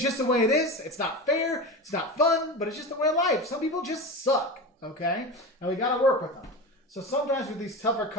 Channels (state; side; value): normal; both; correlation 0.26